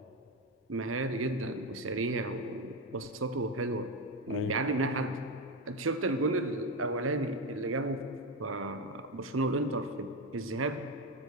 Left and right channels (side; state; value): both; normal; correlation 0.13